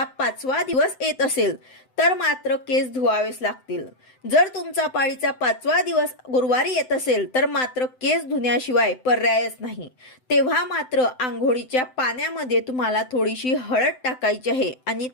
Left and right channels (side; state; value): right; late; 7.8 ms